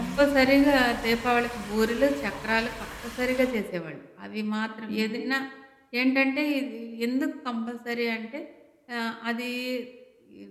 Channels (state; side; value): identical; both; correlation 1.00